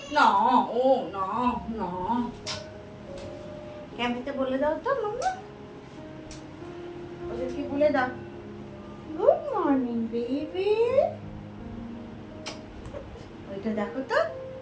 না ও না না ক্যামেতে বলে দাও তো মাম্মা, ওদেরকে বলে দাও গুড মর্নিং বেবি। ওইটা দেখো তো,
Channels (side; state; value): both; identical; correlation 1.00